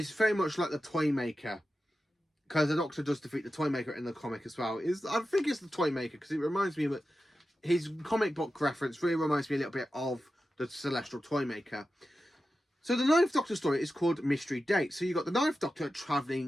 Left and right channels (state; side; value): normal; both; correlation 0.92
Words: very much like the Toymaker, because the Doctor does defeat the Toymaker in the comic as well. I think it's the Toymaker because it reminds me of his comic book reference. Really reminds me a little bit of the Celestial Toymaker. So the Ninth Doctor story is called Mystery Date. So you got the Ninth Doctor